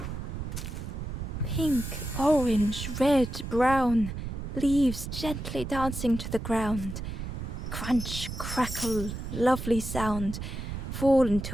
Pink, orange, red, brown, leaves gently dancing to the ground. Crunch, crackle, lovely sound, fall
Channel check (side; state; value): right; noise; rumble, 6 dB below the sound